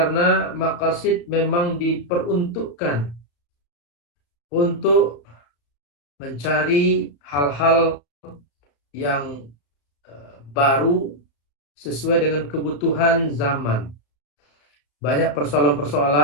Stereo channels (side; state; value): right; late; 35 ms